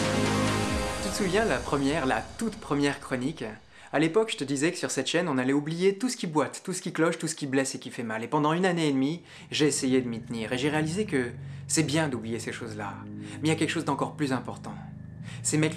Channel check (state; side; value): identical; both; correlation 1.00